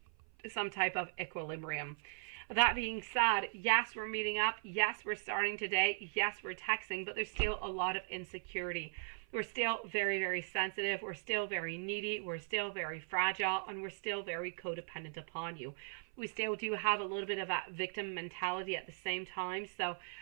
some type of equilibrium. That being said, yes, we're meeting up. Yes, we're starting today. Yes, we're texting, but there's still a lot of insecurity. We're still very, very sensitive. We're still very needy. We're still very fragile, and we're still very codependent upon you. We still do have a little bit of that victim mentality at the same time. So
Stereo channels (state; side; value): silent; left; 52 dB below the other